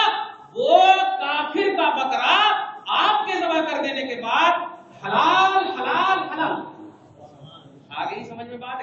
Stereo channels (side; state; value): both; identical; correlation 1.00